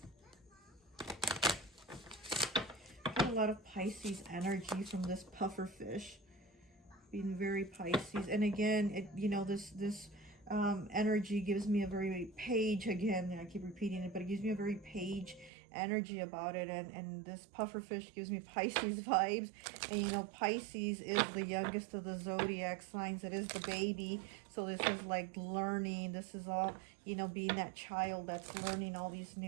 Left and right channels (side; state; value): left; drops out; at 15.5 s